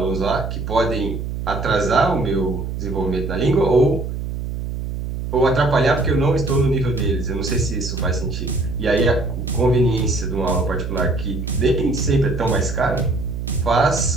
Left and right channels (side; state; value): right; noise; hum, 5 dB below the sound